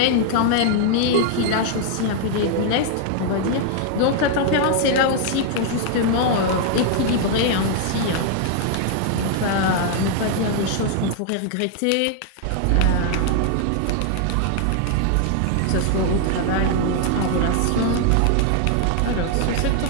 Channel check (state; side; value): different; both; correlation 0.00